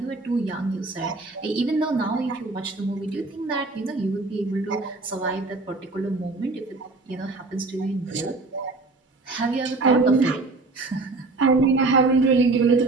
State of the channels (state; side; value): quieter; left; 3.5 dB